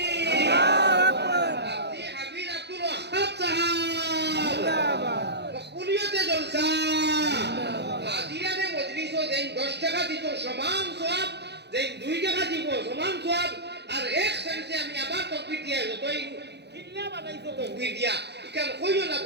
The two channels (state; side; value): late; left; 0.49 ms